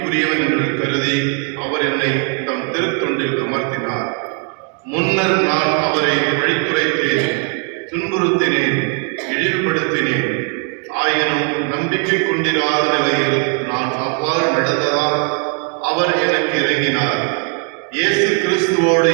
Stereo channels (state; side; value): quieter; left; 38.5 dB